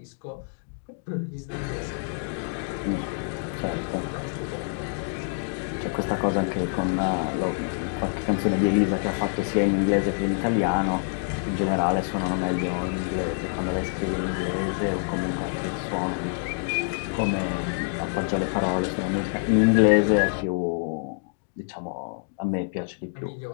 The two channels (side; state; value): right; silent; digital silence